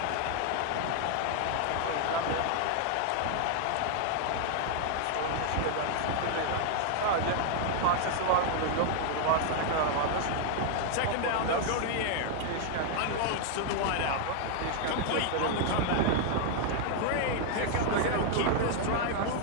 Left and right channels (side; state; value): both; different; correlation 0.00